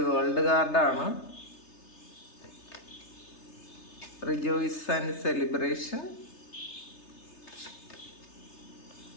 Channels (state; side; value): late; right; 3.3 ms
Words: വേൾഡ് കാർഡാണ്. Rejoice and celebration,